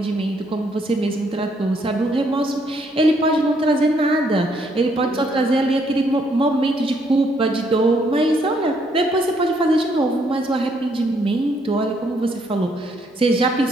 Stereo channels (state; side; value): normal; both; correlation 0.70